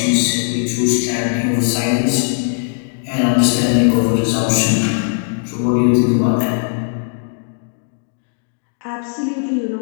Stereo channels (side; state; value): right; silent; digital silence